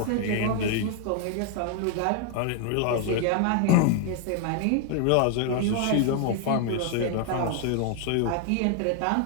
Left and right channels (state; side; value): different; both; correlation 0.00